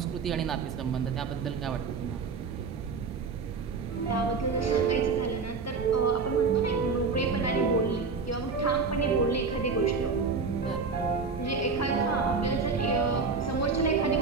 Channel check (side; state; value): left; quieter; 4.7 dB